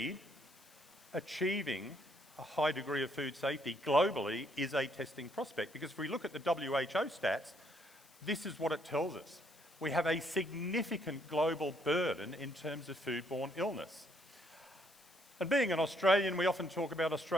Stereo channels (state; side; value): noise; left; hiss, 26 dB below the sound